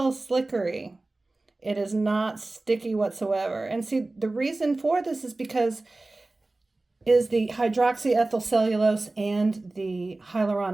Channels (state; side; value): quieter; left; 3.1 dB